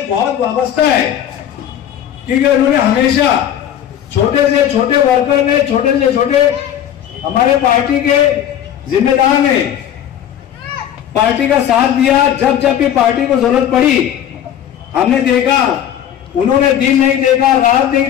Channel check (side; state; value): right; quieter; 10.2 dB